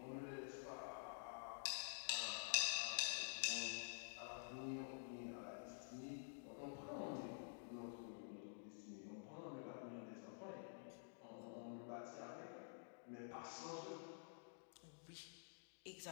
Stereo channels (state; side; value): silent; right; digital silence